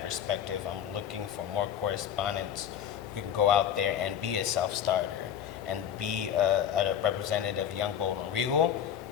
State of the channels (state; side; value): quieter; right; 9.4 dB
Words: perspective, I'm looking for more correspondents who can go out there and be a self-starter and be a representative of Young, Bold, and Regal,